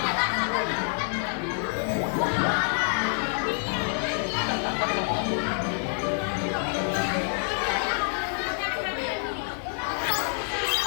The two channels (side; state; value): right; silent; digital silence